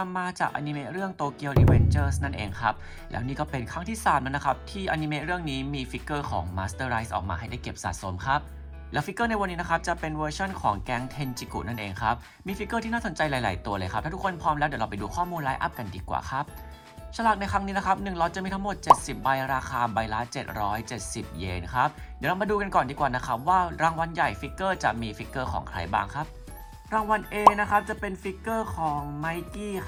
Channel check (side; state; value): both; identical; correlation 1.00